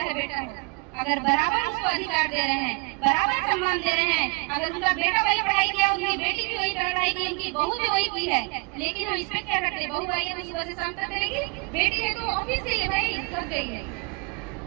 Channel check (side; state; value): left; quieter; 30.6 dB